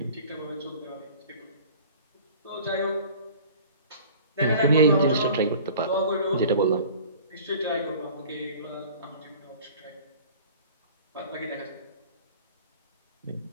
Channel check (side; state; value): both; inverted; correlation -0.45